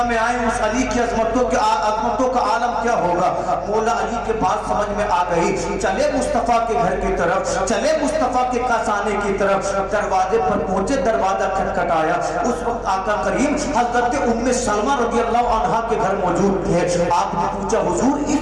میں آئے اس علی کی عظمتوں کا عالم کیا ہوگا۔ مولا علی کے بات سمجھ میں آ گئی، چلے مصطفیٰ کے گھر کی طرف، چلے مصطفیٰ کے کاسانے کی طرف، دروازے پر پہنچے، دروازہ کھٹکھٹایا، اس وقت آقا کریم حضرت ام سلمہ رضی اللہ عنہا کے گھر موجود تھے۔ آپ نے پوچھا حضور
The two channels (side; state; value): both; identical; correlation 1.00